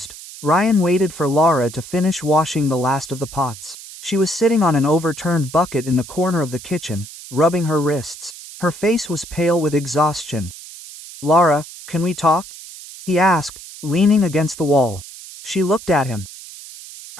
Ryan waited for Laura to finish washing the last of the pots. She was sitting on an overturned bucket in the corner of the kitchen, rubbing her wrists. Her face was pale with exhaustion. Laura, can we talk? He asked, leaning against the wall. She looked at him.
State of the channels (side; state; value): right; noise; hiss, 15 dB below the sound